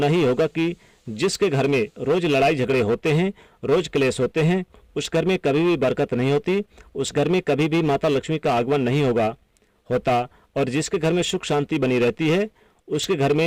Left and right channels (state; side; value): identical; both; correlation 1.00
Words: ही होगा कि जिसके घर में रोज लड़ाई झगड़े होते हैं, रोज क्लेश होते हैं, उस घर में कभी भी बरकत नहीं होती, उस घर में कभी भी माता लक्ष्मी का आगमन नहीं होता। और जिसके घर में सुख शांति बनी रहती है उसके घर